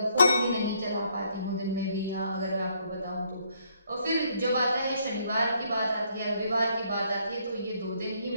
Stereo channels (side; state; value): both; inverted; correlation -0.70